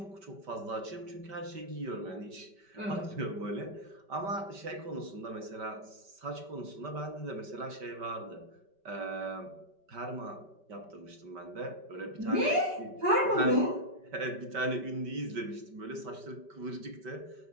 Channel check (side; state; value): left; late; 5.2 ms